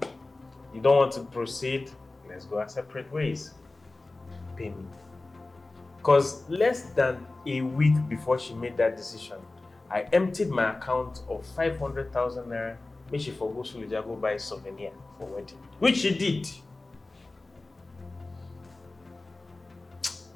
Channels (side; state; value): right; quieter; 3.1 dB